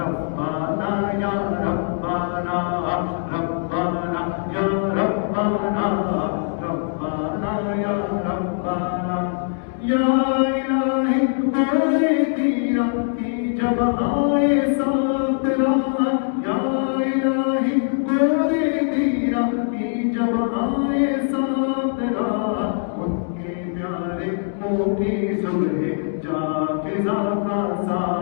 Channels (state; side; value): silent; right; digital silence